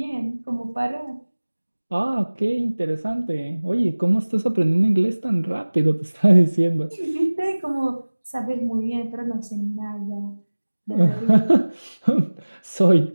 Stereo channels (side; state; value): both; inverted; correlation -1.00